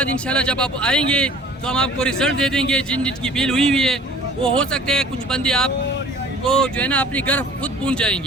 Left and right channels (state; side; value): normal; both; correlation 0.48